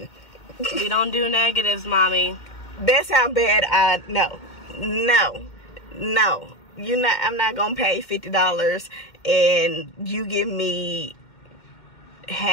We don't do negatives, mommy. That's how bad no. I'm not gonna pay $50 and you give me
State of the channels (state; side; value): late; right; 2.2 ms